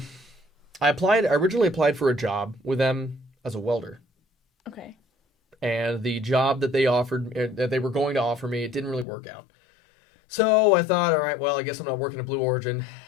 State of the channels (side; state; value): right; drops out; at 9.1 s